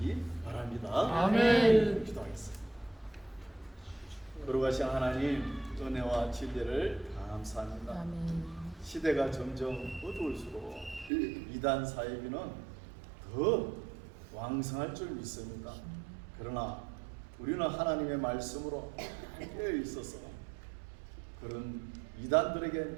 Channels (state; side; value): drops out; left; at 11.1 s